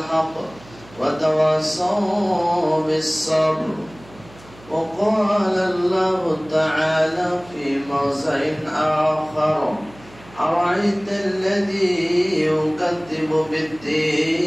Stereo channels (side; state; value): right; noise; hum, 22 dB below the sound